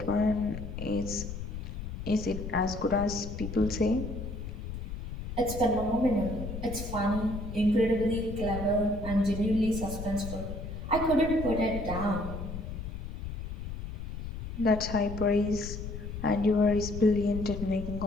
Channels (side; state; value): left; noise; rumble, 7 dB below the sound